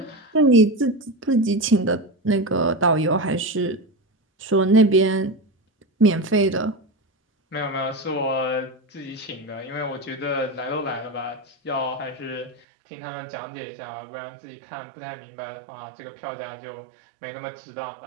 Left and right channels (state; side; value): drops out; left; at 12.6 s